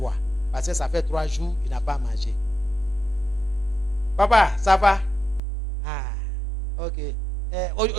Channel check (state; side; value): drops out; left; at 5.4 s